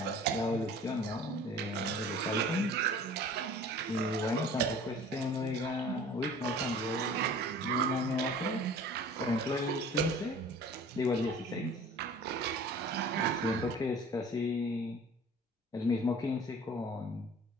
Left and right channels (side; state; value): both; normal; correlation 0.46